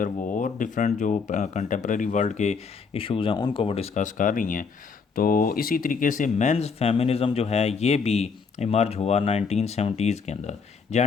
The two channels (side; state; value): right; quieter; 5.4 dB